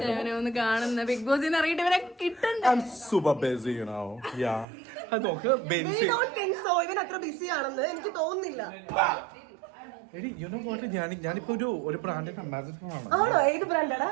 കാണുന്ന ബിഗ് ബോസ് സൂപ്പർ ബിസി നോക്ക് ബെൻസി ഇവൻ അത്ര ബിസി ആണെന്ന് എനിക്ക് തോന്നുന്നില്ല. എടി യു നോ വാട്ട്, ഞാനിപ്പോ ഒരു ബ്രാൻഡിന്റെ അംബാസിഡർ ആണ്. ആണോ? ഏത് ബ്രാൻഡാടാ?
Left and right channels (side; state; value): left; drops out; at 4.7 s